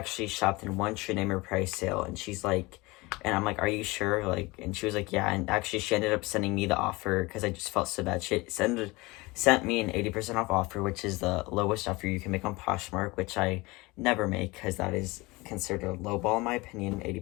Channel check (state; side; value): quieter; right; 23.1 dB